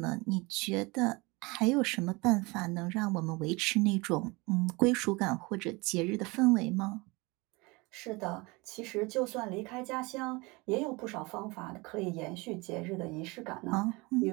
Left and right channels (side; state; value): left; quieter; 25.3 dB